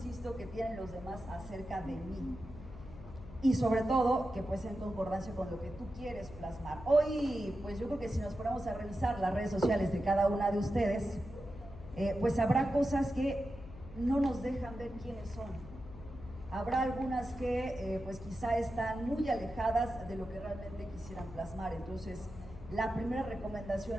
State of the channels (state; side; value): noise; left; hum, 15 dB below the sound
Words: que tienen los demás acerca de mí. Y sobre todo, que pues en concordancia con lo que tú quieres plasmar. Hoy, pues yo creo que si nos ponemos a revisar las redes sociales de cada una de ustedes, pues habrá cosas que no nos dejan ver quiénes son. Habrá algunas que pues quizá están muy alejadas de lo que realmente quisieran plasmar. Entonces, la primera